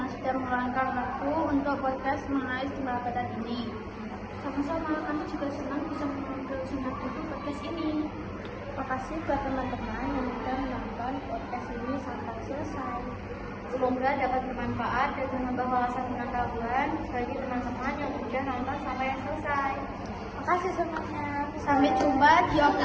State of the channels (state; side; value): identical; both; correlation 1.00